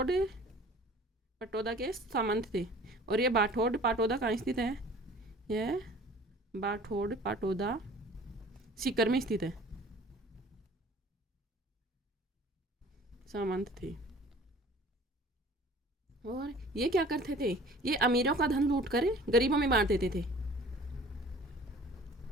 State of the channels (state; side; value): normal; both; correlation 0.48